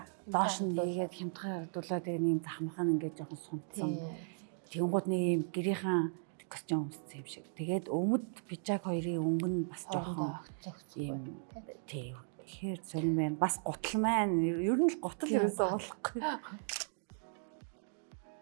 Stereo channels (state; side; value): silent; left; digital silence